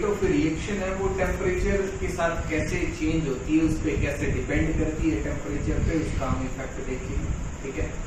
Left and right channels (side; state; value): both; identical; correlation 1.00